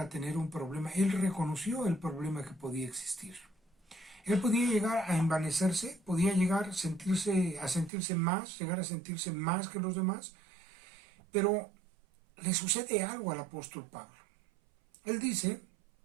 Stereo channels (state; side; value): drops out; left; at 7.9 s